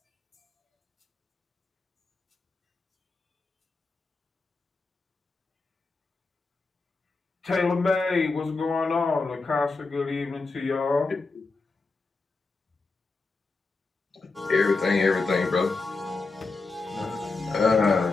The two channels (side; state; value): right; quieter; 3.8 dB